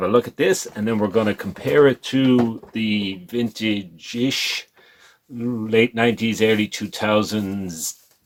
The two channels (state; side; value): identical; both; correlation 1.00